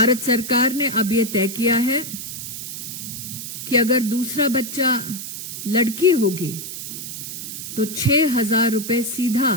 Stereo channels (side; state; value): right; noise; hiss, 8 dB below the sound